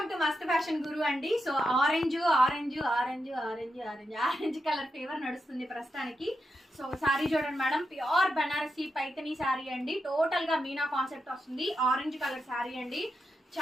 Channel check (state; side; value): normal; both; correlation 0.86